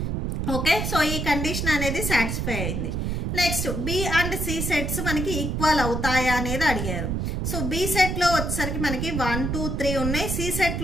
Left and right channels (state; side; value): noise; right; rumble, 1 dB below the sound